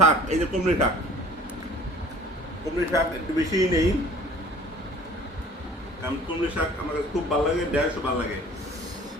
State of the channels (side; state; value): both; normal; correlation 0.48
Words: এই যে কুমড়ি শাক। কুমড়ি শাক একটু বেশিই নেই, কারণ কুমড়ি শাক আমার কাছে খুব ভালো লাগে, ঢেঁড়সও ভালো লাগে।